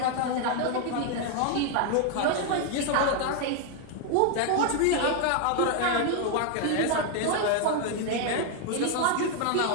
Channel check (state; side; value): different; both; correlation 0.00